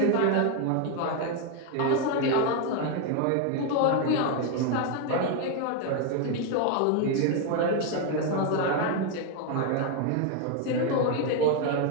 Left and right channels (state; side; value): different; both; correlation 0.01